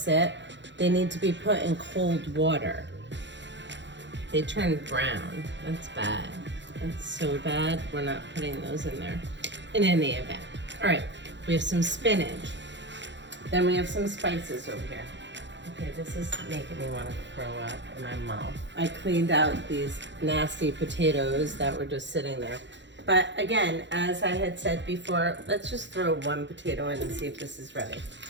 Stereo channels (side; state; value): left; late; 0.53 ms